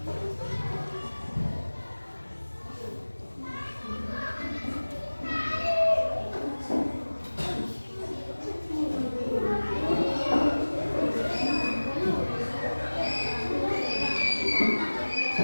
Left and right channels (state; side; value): inverted; both; correlation -1.00